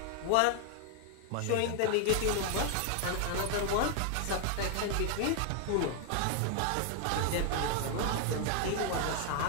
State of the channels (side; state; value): both; different; correlation 0.00